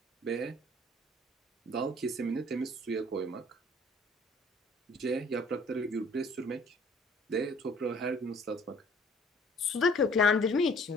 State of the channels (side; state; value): both; normal; correlation 0.55